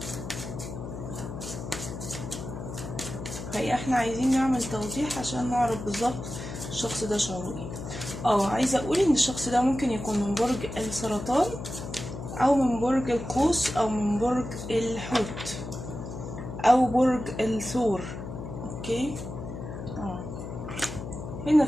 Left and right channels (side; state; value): left; noise; hum, 8 dB below the sound